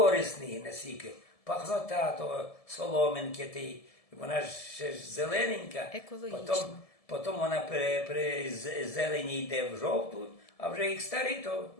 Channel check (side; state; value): right; late; 1.7 ms